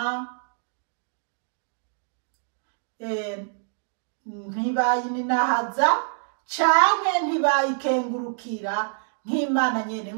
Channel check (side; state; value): left; silent; digital silence